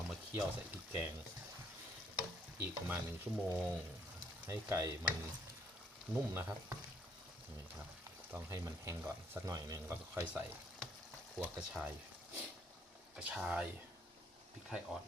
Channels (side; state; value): both; normal; correlation 0.67